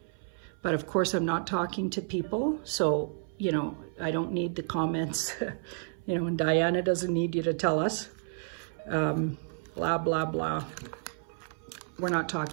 But of course, I'm not talking to people, so, you know, I don't need the comments, you know, and Diana doesn't need you to tell us, blah, blah, blah. We're not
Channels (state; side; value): silent; left; 57 dB below the other